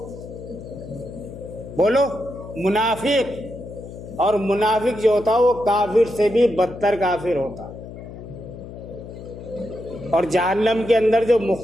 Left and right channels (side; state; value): left; noise; hum, 13 dB below the sound